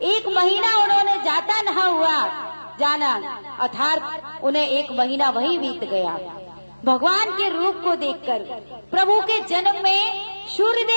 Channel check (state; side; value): inverted; both; correlation -1.00